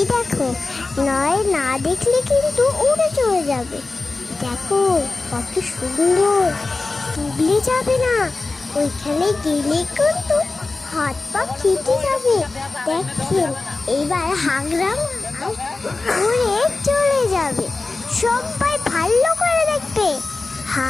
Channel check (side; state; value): right; quieter; 3.6 dB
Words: দেখো, নয় না দেখলে কিন্তু উড়ে চলে যাবে। দেখো কত সুন্দর, ডুবলে যাবে না। ওইখানে গেলে কিন্তু হাত পা কেটে যাবে। দেখেন, এবার হাগরামা উড়ে চলে যাবে। সবাই ভালো করে দেখবে,